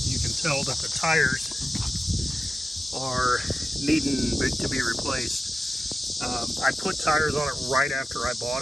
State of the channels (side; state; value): both; normal; correlation 0.94